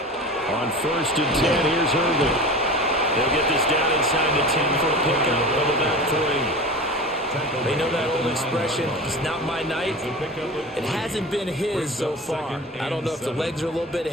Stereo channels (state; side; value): normal; both; correlation 0.33